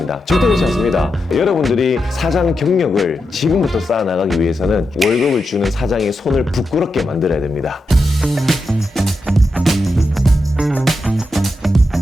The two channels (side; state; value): both; normal; correlation 0.87